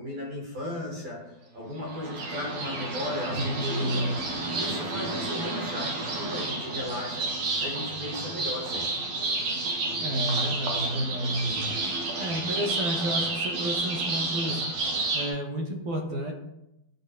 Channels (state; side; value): late; left; 12 ms